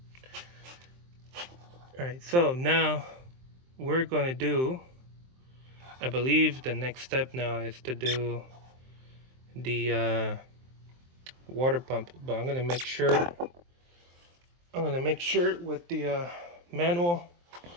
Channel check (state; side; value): late; left; 23 ms